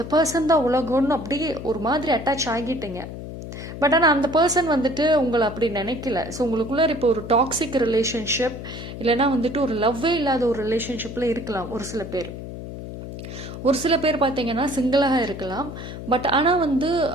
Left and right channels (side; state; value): left; noise; hum, 10 dB below the sound